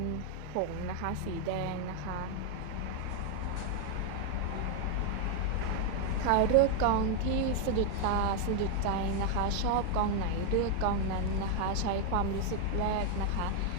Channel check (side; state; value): both; different; correlation 0.01